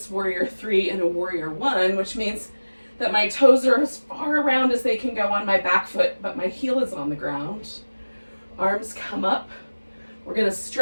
warrior three in a warrior one, which means that my toes are as far around as they can go on my back foot, but my heel is on the ground. Arms come up. We're going to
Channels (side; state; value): both; inverted; correlation -1.00